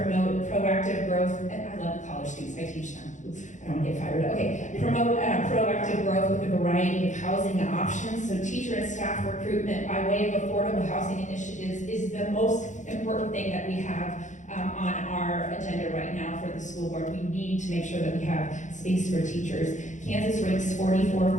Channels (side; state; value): right; late; 0.36 ms